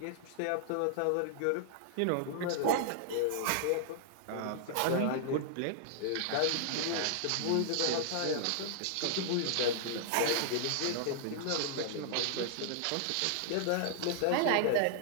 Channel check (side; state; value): both; different; correlation -0.01